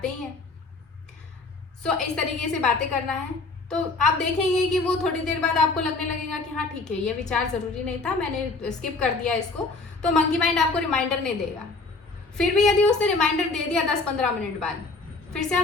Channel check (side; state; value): right; quieter; 3.6 dB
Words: ही हैं। सो इस तरीके से बातें करना है, तो आप देखेंगे कि वो थोड़ी देर बाद आपको लगने लगेगा कि हाँ ठीक है, ये विचार ज़रूरी नहीं था, मैंने स्किप कर दिया इसको। तो मंकी माइंड आपको रिमाइंडर नहीं देगा। फिर भी यदि उसने रिमाइंडर दे दिया 10-15 मिनट बाद, फिर से